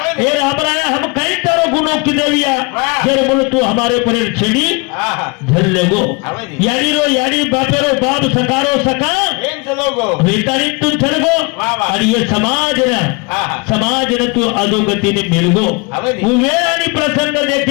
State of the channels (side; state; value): right; quieter; 29.0 dB